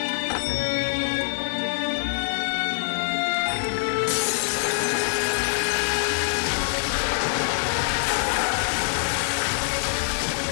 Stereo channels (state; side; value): silent; right; digital silence